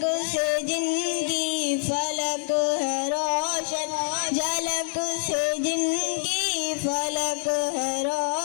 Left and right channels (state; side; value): silent; right; digital silence